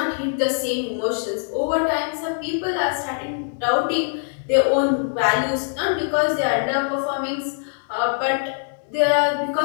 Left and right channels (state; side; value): silent; right; digital silence